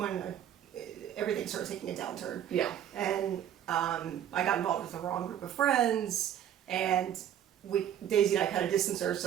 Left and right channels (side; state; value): left; quieter; 10.3 dB